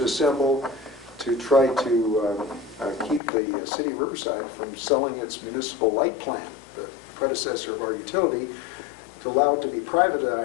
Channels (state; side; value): drops out; right; at 3.2 s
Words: assemble to try to keep the city of Riverside from selling its municipal light plant, the predecessor of our utility, to allow it to be